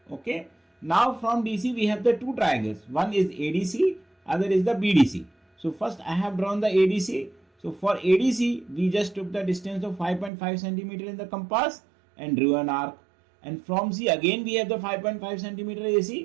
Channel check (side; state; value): left; drops out; at 10.3 s